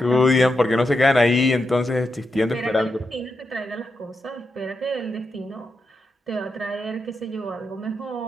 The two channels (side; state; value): both; normal; correlation 0.86